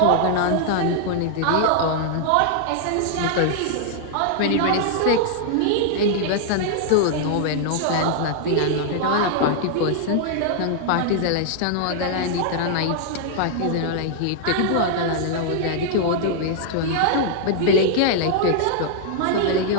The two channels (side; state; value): both; different; correlation 0.00